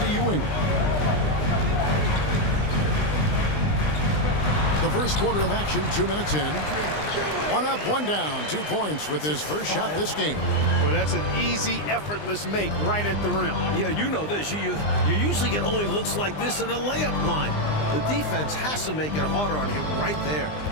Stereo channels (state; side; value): late; right; 20 ms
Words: Ewing. The first quarter of action, 2 minutes in. 1 up, 1 down, 2 points with his first shot this game. Well, that's an easy, effortless make right at the rim. Yeah, you know this. You usually get only looks like this in the layup line. The defense has to make it harder on him right there.